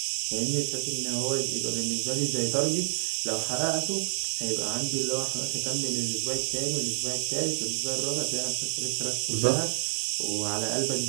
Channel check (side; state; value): left; silent; digital silence